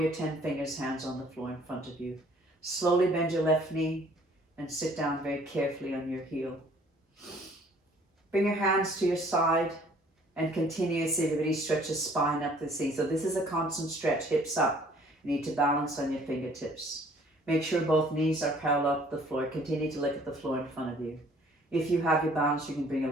your 10 fingers, hands on the floor in front of you. Slowly bend your left knee and sit down very carefully on your heel. Bring your hands to your side and continuously, everybody, stretch the spine up the seat. So this is a constant stretch, hips up. You need to balance on your fingertips. Make sure both knees are parallel to the floor. Continue to look at the floor in front of you. If you have your balance, you can bring your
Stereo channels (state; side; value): normal; both; correlation 0.57